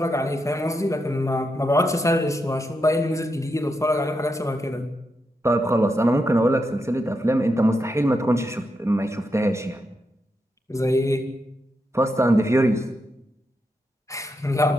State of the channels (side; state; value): both; normal; correlation 0.84